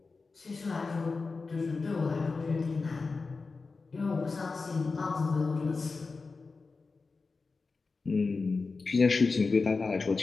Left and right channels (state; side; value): quieter; right; 4.2 dB